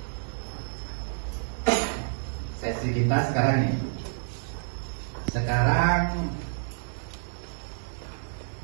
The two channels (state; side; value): silent; left; digital silence